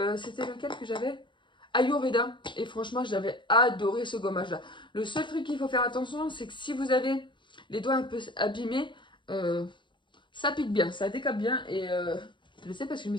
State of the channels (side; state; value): right; late; 0.23 ms